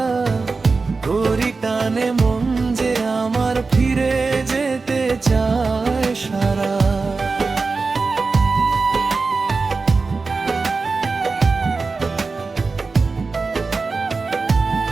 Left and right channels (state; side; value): quieter; left; 4.2 dB